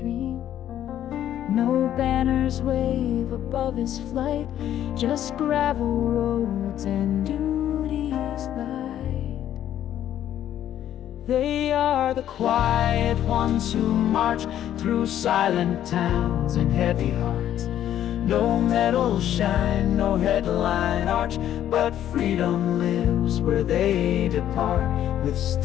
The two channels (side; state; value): right; quieter; 11.3 dB